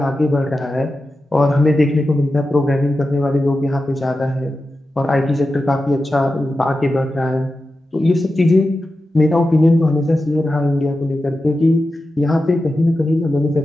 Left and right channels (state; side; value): normal; both; correlation 0.92